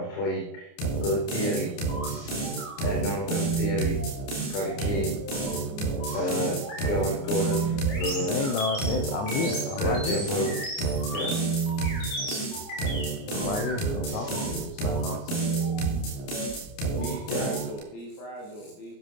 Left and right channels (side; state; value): right; late; 29 ms